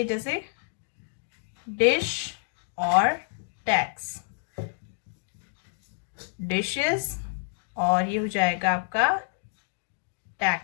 जैसे डिश और टैक्स. डिशेस और ये हो जाएगा आपका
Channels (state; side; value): silent; right; digital silence